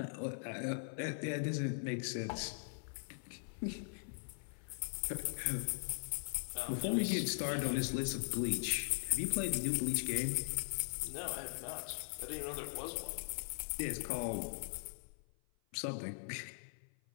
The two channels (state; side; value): silent; right; 51 dB below the other